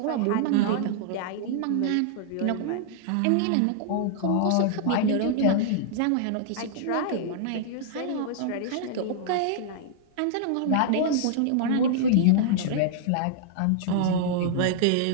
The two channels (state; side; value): different; both; correlation -0.01